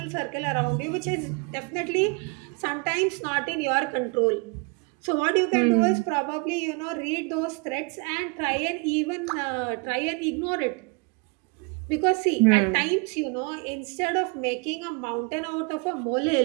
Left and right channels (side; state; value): left; quieter; 32.1 dB